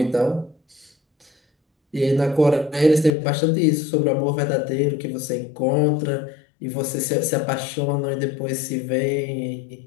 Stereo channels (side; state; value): right; drops out; at 3.1 s